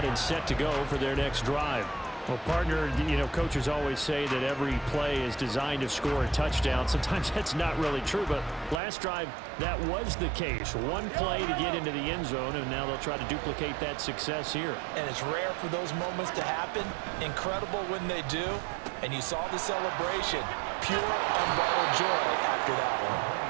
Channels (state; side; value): drops out; left; at 8.8 s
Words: and set to go for their next drive. Well, partner, coaches always say that every play is designed to score a touchdown. Sometimes that's not really true, but last drive, that was the case. One play to get into the end zone, and now they'll try to duplicate that success here. And it's rare for those moments to happen. Incredible when they do. And you saw the celebration. Pure, unbridled joy after that